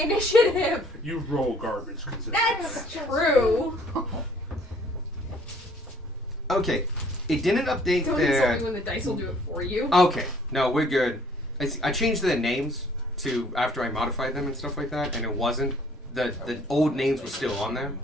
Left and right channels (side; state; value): both; normal; correlation 0.59